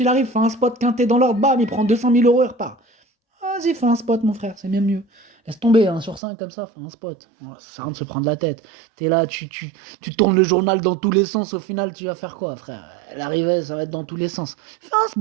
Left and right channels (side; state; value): left; drops out; at 6.2 s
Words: il arrive, fait un spot quinté dans l'ordre, bam, il prend 200 000 euros et repart. Vas-y, fais un spot, mon frère, c'est bien mieux. Laisse tomber, hein, sur 5 comme ça, fais un spot. Ouais, ça sert à rien de se prendre la tête. T'es là, tu tournes le journal dans tous les sens, au final, tu vas faire quoi, frère? L'arrivée, ça va être dans tous les sens. Fais un